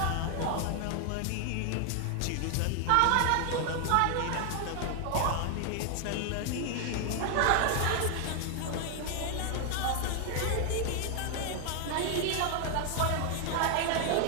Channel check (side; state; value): both; different; correlation 0.00